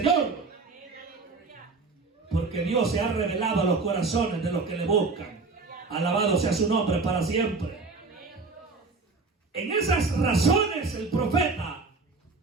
porque Dios se ha revelado a los corazones de los que le buscan. Alabado sea su nombre para siempre. En esas razones el profeta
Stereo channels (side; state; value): left; quieter; 4.0 dB